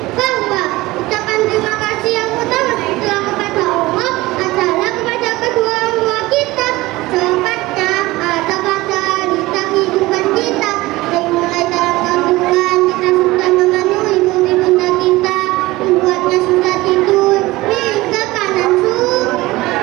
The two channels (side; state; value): left; quieter; 19.5 dB